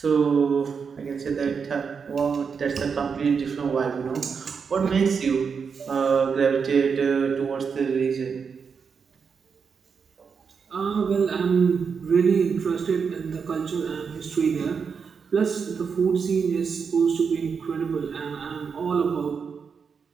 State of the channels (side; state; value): left; quieter; 6.0 dB